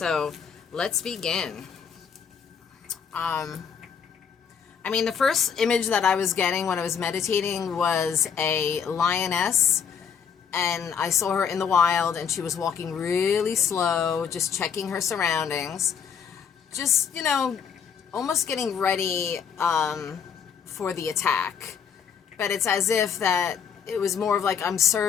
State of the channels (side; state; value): right; quieter; 7.2 dB